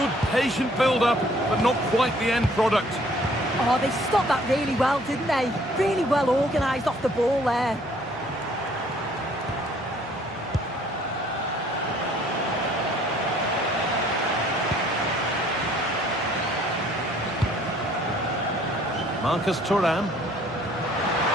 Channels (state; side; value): normal; both; correlation 0.59